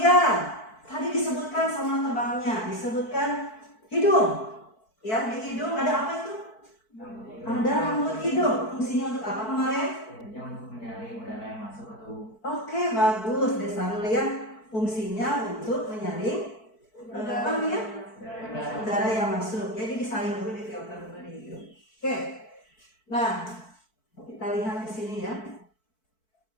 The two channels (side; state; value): right; late; 4.5 ms